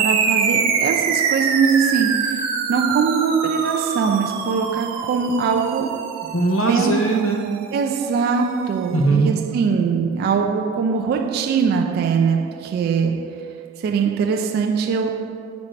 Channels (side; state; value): left; quieter; 5.2 dB